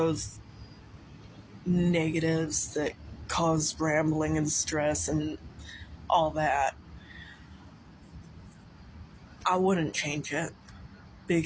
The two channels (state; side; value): identical; both; correlation 1.00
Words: negatives that cause rambling and stress and all that, I wouldn't change it,